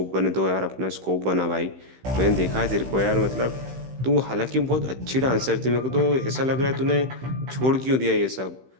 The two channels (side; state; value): left; late; 15 ms